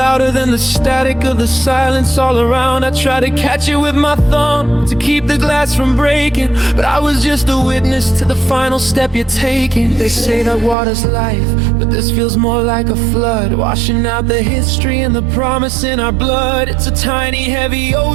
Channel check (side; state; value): left; drops out; at 10.8 s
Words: than the static of the silence all around. I tried to catch it with my thumb to keep the glass from breaking, but I was just a witness to the final step you're taking. They say that water's life, but this feels more like a flood, washing out the history and the promise in our blood. It's a tiny, heavy